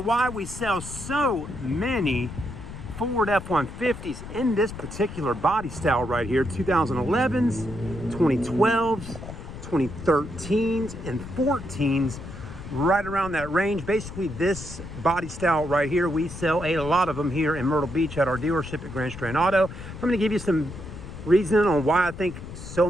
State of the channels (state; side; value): noise; left; rumble, 11 dB below the sound